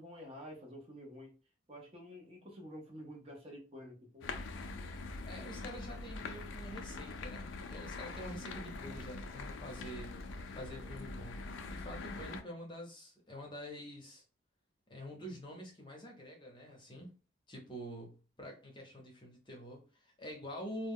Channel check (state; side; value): normal; both; correlation 0.48